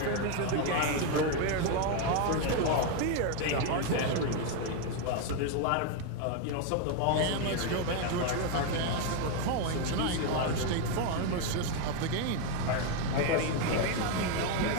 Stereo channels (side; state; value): both; different; correlation 0.01